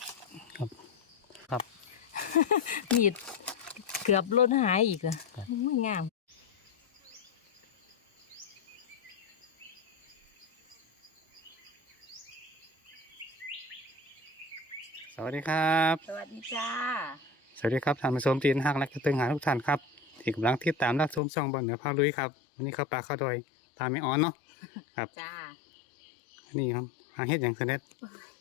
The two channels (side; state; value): right; drops out; at 21.2 s